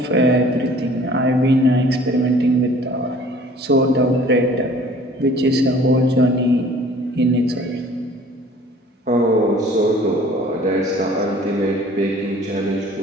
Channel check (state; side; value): normal; both; correlation 0.51